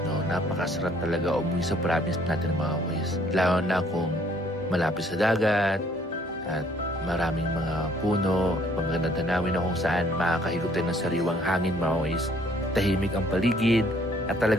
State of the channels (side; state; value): both; normal; correlation 0.62